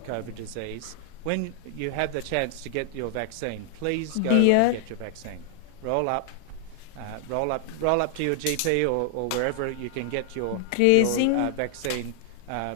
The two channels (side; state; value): both; different; correlation 0.00